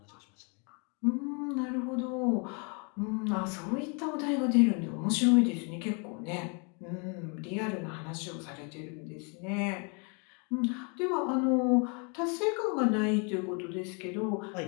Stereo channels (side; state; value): right; quieter; 35.3 dB